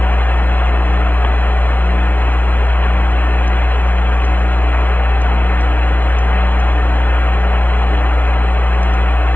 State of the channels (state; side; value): late; right; 0.078 ms